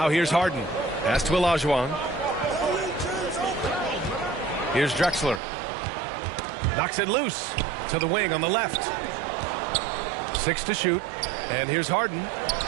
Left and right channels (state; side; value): drops out; left; at 5.4 s